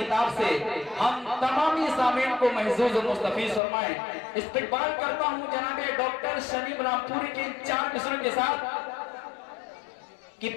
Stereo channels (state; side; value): drops out; right; at 3.6 s